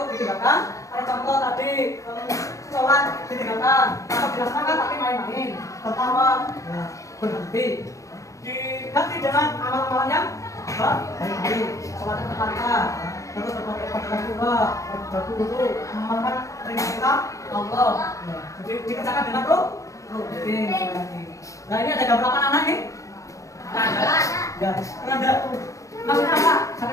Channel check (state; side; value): late; right; 0.16 ms